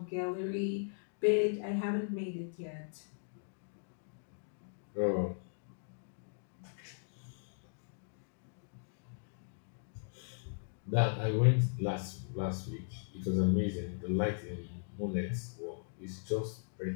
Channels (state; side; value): silent; right; digital silence